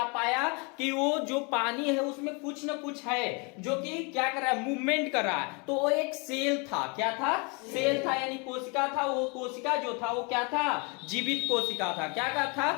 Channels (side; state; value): right; quieter; 31.8 dB